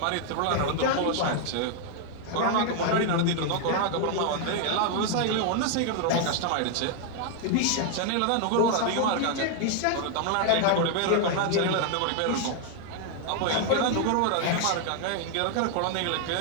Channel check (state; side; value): different; both; correlation 0.00